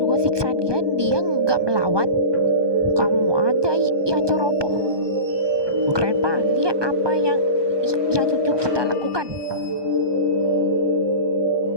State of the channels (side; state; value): left; late; 1.2 ms